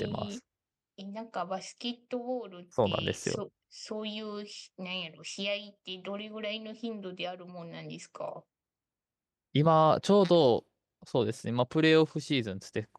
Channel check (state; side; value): identical; both; correlation 1.00